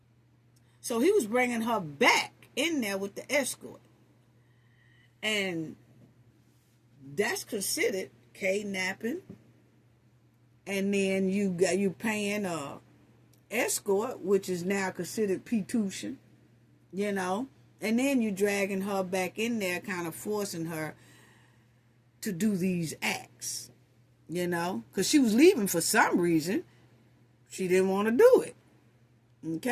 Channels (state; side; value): identical; both; correlation 1.00